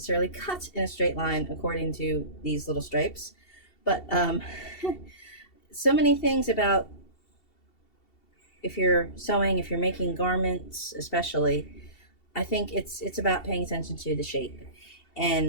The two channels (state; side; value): late; right; 2.7 ms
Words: cut in a straight line according to these little stripes. But so many things about, if you're sewing, if you're making garments especially, I think it's about paying attention to the shape.